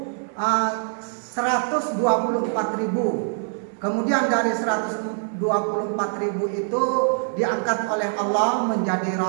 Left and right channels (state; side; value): silent; left; digital silence